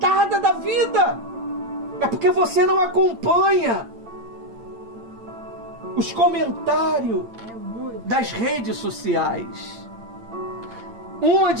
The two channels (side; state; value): left; late; 8.8 ms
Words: da vida. É porque você não acompanha os comentários das redes sociais. Uma